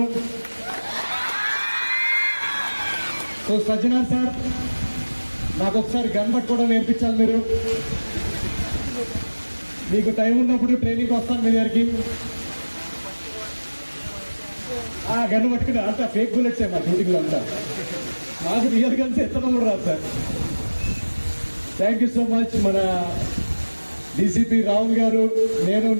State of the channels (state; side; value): inverted; both; correlation -1.00